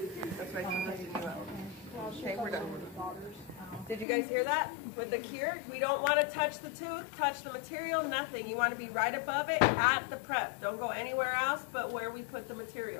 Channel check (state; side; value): drops out; right; at 4.0 s